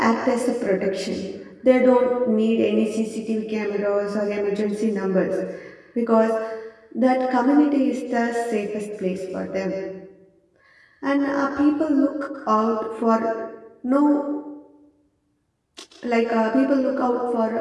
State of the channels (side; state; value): both; identical; correlation 1.00